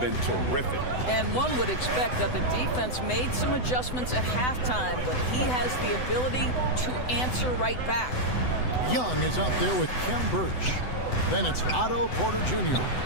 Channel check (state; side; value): late; right; 7.9 ms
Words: terrific. And one would expect that the defense made some adjustments at halftime, but he has the ability to answer right back. Young is out there with Kem Birch. Then it's Otto Porter Jr.